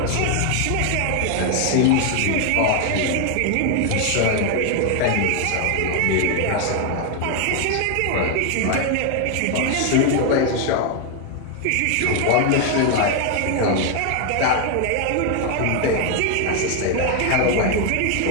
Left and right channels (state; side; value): different; both; correlation 0.01